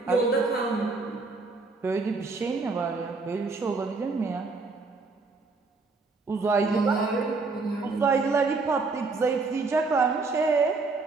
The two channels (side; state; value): left; quieter; 3.9 dB